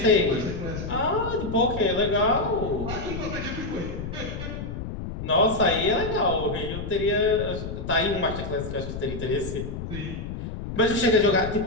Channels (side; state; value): left; noise; rumble, 7 dB below the sound